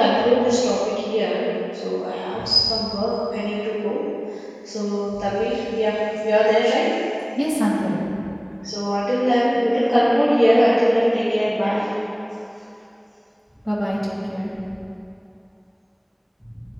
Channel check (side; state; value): both; identical; correlation 1.00